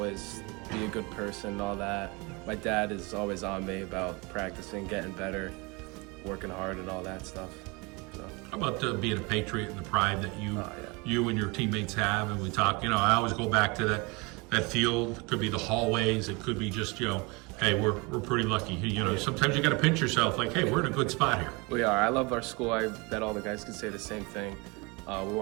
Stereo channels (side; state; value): left; quieter; 27.1 dB